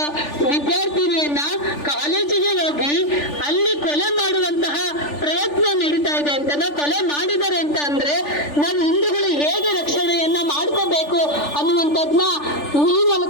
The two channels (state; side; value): late; right; 3.4 ms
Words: ವಿದ್ಯಾರ್ಥಿನಿಯನ್ನ ಕಾಲೇಜಿಗೆ ಹೋಗಿ ಅಲ್ಲಿ ಕೊಲೆ ಮಾಡುವಂತಹ ಪ್ರಯತ್ನ ನಡೀತಾ ಇದೆ ಅಂತ, ಕೊಲೆ ಮಾಡಿದ್ದಾರೆ ಅಂತ ಅಂದ್ರೆ ನಾವು ಹಿಂದೂಗಳು ಹೇಗೆ ರಕ್ಷಣೆಯನ್ನ ಮಾಡ್ಕೋಬೇಕು ಅನ್ನುವಂಥದ್ನ ಈ